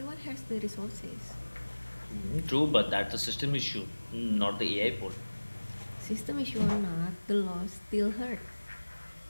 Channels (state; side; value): inverted; both; correlation -1.00